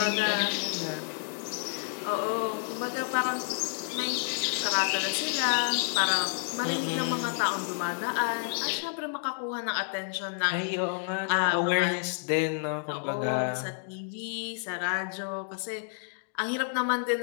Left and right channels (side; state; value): right; silent; digital silence